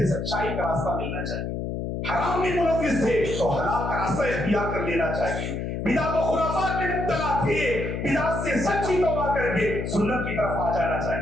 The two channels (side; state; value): left; noise; hum, 3 dB below the sound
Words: سچائی کا راستہ ملنا چاہیے۔ حرام میں ملوث تھے تو حلال کا راستہ اختیار کر لینا چاہیے۔ بدعت و خرافات میں مبتلا تھے، بدعت سے سچی توبہ کر کے سنت کی طرف آ جانا